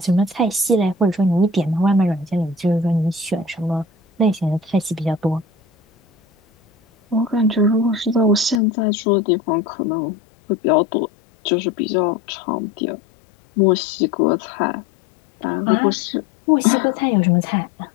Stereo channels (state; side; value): drops out; right; at 8.6 s